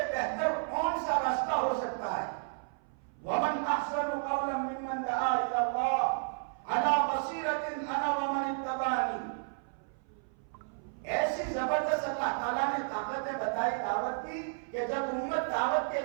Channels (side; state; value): left; silent; 56 dB below the other